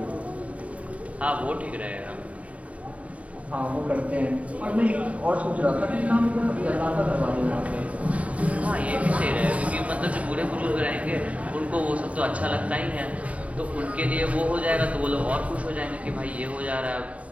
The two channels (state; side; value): late; left; 0.066 ms